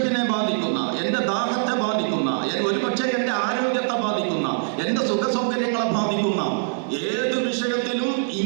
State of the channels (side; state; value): left; silent; 63 dB below the other